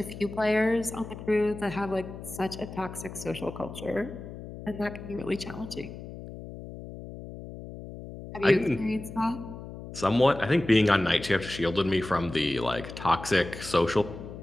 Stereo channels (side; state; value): left; noise; hum, 12 dB below the sound